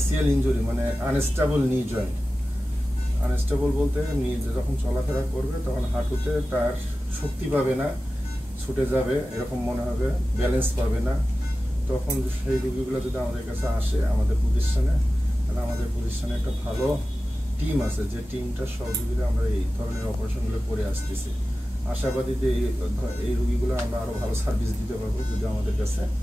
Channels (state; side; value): normal; both; correlation 0.95